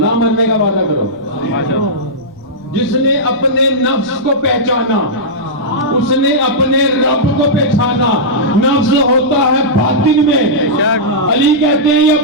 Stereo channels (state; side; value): noise; left; rumble, 28 dB below the sound